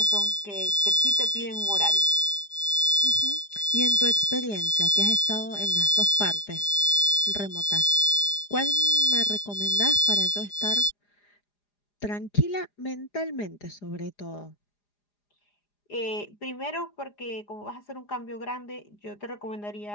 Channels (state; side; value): late; right; 4.9 ms